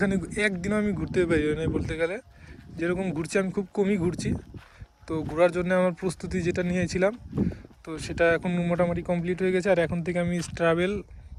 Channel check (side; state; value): both; identical; correlation 1.00